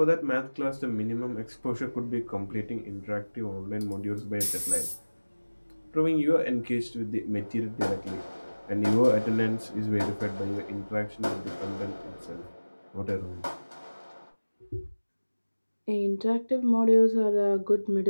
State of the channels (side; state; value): both; inverted; correlation -1.00